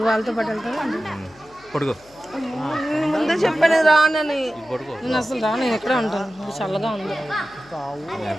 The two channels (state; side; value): noise; left; hum, 28 dB below the sound